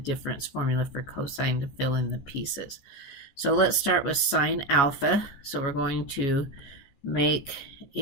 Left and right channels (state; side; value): late; right; 14 ms